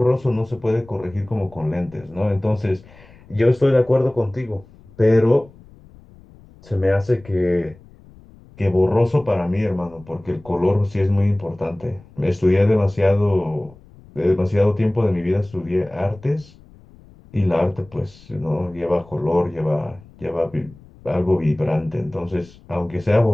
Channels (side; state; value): left; noise; rumble, 24 dB below the sound